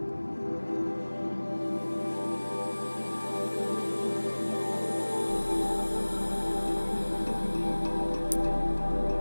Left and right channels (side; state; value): both; inverted; correlation -1.00